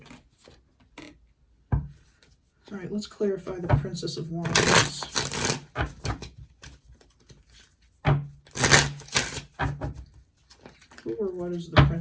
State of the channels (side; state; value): both; identical; correlation 1.00